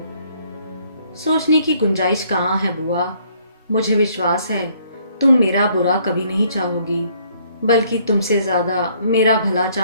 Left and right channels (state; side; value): inverted; both; correlation -0.65